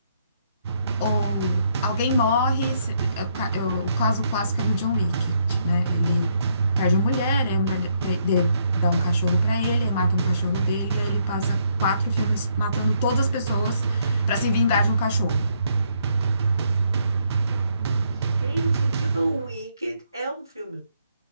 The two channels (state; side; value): inverted; both; correlation -0.73